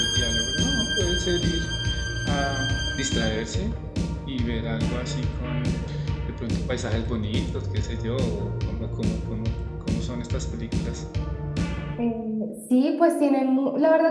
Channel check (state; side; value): identical; both; correlation 1.00